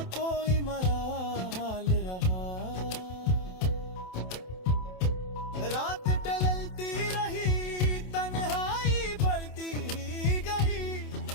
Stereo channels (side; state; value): right; late; 27 ms